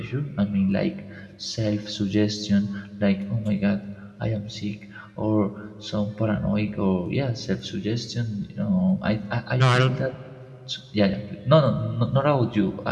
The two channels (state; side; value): identical; both; correlation 1.00